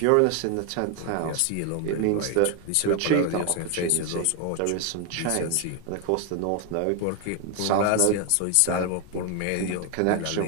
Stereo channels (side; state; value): both; different; correlation 0.01